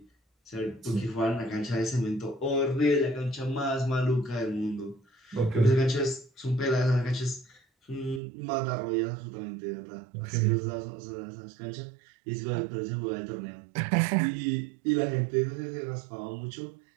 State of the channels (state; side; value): drops out; left; at 8.2 s